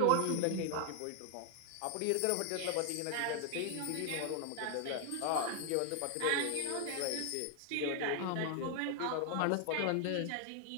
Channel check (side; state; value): both; different; correlation 0.00